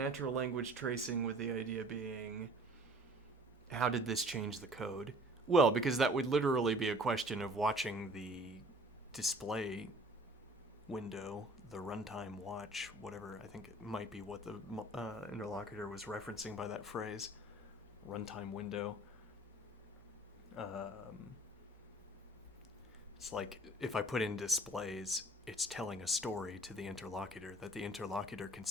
language tracing, with the idea being, how did this change the code? Well, because that would literally be a question of watching the display window, the runtime watch, whatever. I think it might be what the interlocutor was referencing by that phrase, runtime window. It's like if I put in displays, it's telling a story to the interlocutor that the interlocutor can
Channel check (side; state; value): both; normal; correlation 0.51